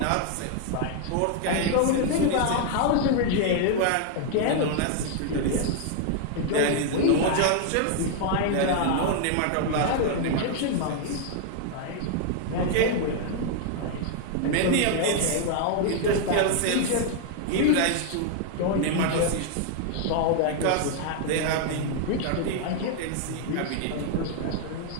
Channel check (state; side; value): different; both; correlation 0.00